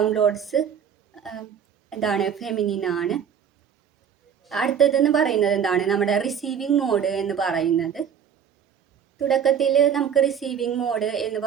എന്താണ്? ഫെമിനിൻ ആണ്. അടുത്തതെന്ന് പറയുന്നത് എന്താണ്? നമ്മുടെ റിസീവിങ് മോഡ് എന്ന് പറയുന്നത്. തുടക്കത്തിൽ നമുക്ക് റിസീവിങ് മോഡ് എന്ന്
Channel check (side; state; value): left; quieter; 7.9 dB